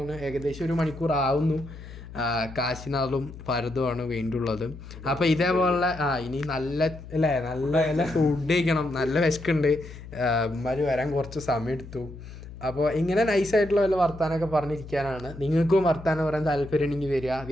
ഏകദേശം 1 മണിക്കൂർ ആവുന്നു. കാശിനാളും ഭരതുമാണ് വേണ്ടിയുള്ളത്. അപ്പോൾ ഇതേപോലെ ഇനി നല്ല അല്ലേ നല്ല ഫുഡ് കഴിക്കണം, നല്ല വിശക്കുണ്ട്. ഇമാര് വരാൻ കുറച്ച് സമയം എടുത്തു. അപ്പോൾ ഇങ്ങനെ നൈസായിട്ടുള്ള വല്ല വർത്താനമൊക്കെ പറഞ്ഞിരിക്കാനാണ്. നിങ്ങൾക്കും വർത്താനം പറയാൻ താല്പര്യം ഉണ്ടെങ്കിൽ വരിക,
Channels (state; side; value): noise; left; hum, 14 dB below the sound